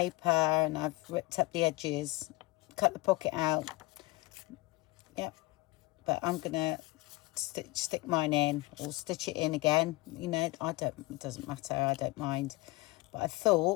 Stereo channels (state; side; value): quieter; right; 21.5 dB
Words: and I've ripped up the edges, cut the pocket out. Yep, but I'm going to stick mine in, or stitch it in again. You know, it doesn't matter. I don't mind. But I